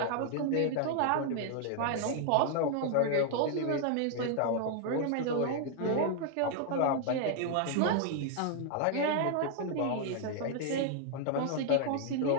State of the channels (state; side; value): different; both; correlation 0.00